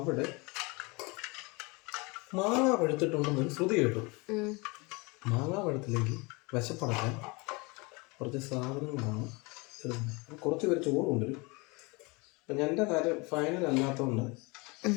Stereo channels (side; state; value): right; quieter; 27.2 dB